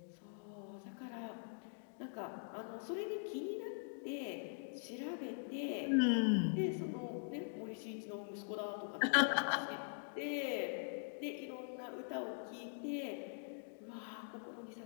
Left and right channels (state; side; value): silent; right; digital silence